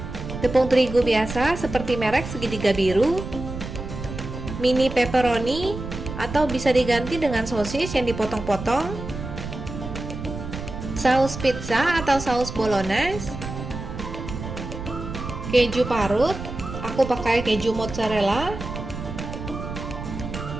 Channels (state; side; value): noise; right; rumble, 8 dB below the sound